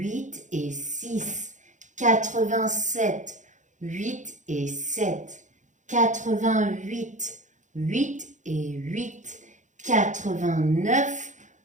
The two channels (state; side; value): late; left; 0.36 ms